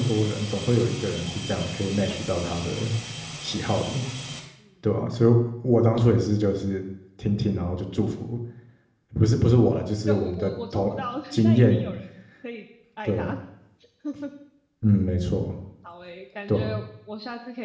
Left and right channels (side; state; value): both; identical; correlation 1.00